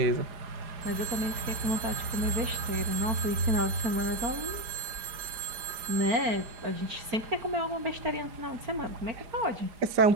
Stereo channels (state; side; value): late; left; 4.4 ms